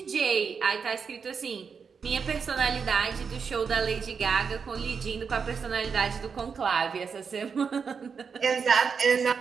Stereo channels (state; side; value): quieter; left; 6.0 dB